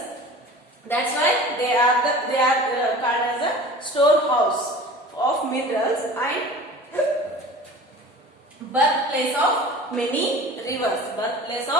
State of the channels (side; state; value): both; normal; correlation 0.40